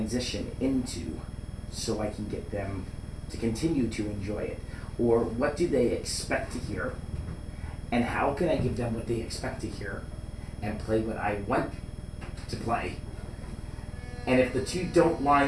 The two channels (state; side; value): identical; both; correlation 1.00